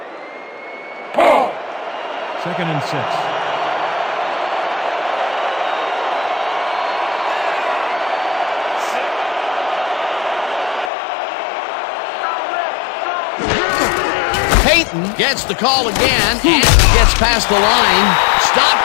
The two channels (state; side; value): drops out; right; at 10.9 s